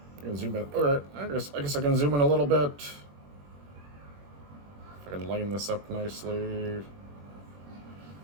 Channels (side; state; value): left; late; 21 ms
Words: I can zoom in. Alright, I guess I can zoom in a little bit. If I can line this up nicely.